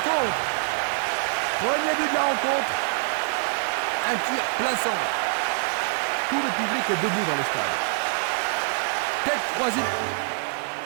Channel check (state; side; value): silent; left; digital silence